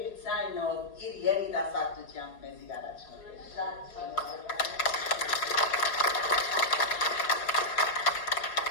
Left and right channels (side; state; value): right; late; 4.7 ms